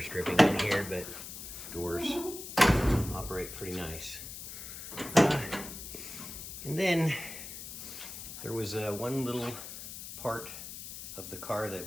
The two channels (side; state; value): left; noise; hiss, 10 dB below the sound